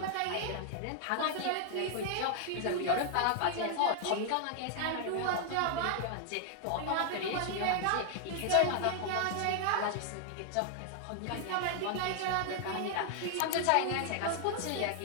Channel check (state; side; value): different; both; correlation 0.00